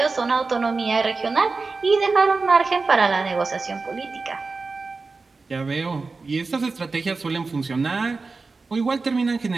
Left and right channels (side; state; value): left; quieter; 4.1 dB